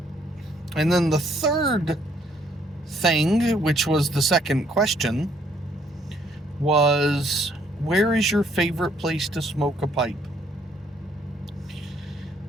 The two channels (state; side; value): normal; both; correlation 0.67